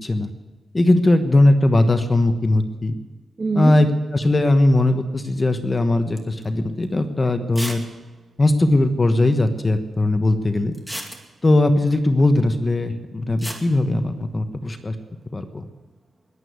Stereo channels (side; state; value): both; normal; correlation 0.95